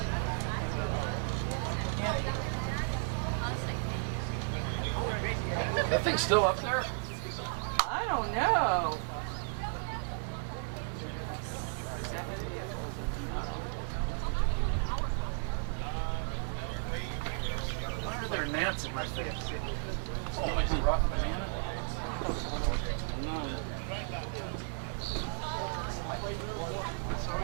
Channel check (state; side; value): silent; left; 55 dB below the other